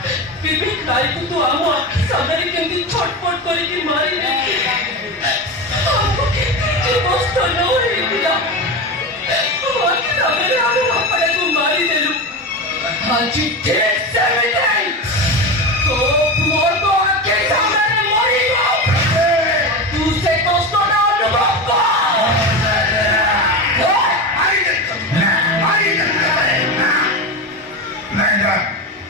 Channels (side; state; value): both; normal; correlation 0.21